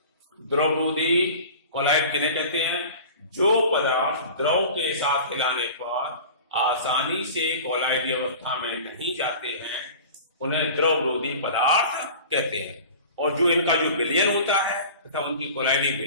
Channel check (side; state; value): both; inverted; correlation -0.39